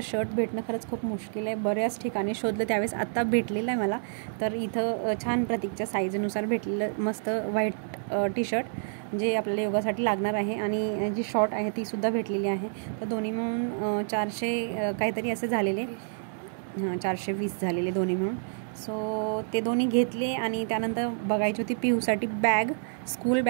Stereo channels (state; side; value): silent; left; 59 dB below the other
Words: शर्ट भेटणं खरंच खूप मुश्किल आहे. बऱ्याच ठिकाणी शोधलं, त्यावेळेस आत्ता भेटलेलं आहे मला. तर इथं छान प्रतीकच्या साईजनुसार भेटलेलं मस्त व्हाईट टी-शर्ट जे आपल्याला योगासाठी लागणार आहे. आणि जी शॉर्ट आहे तीसुद्धा भेटलेली आहे. तर दोन्ही मिळून 400 काहीतरी असे झालेले, 420 झालेले दोन्ही मिळून. सो ते दोन्ही घेतले. आणि त्यानंतर बघायची होती पिऊसाठी बॅग, स्कूल